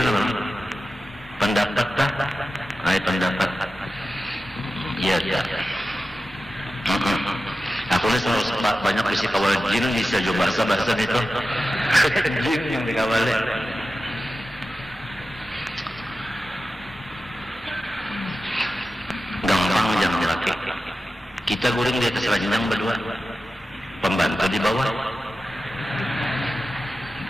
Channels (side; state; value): both; normal; correlation 0.93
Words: apa? Pendapat tak? Pendapat. Iya. Aku ini selalu banyak isi kawal jin bisa juga bahasa itu. Jin yang dikawalnya. Gampang jangan laki. Kita guring di atas ranjang berdua. Pembantu di bawah.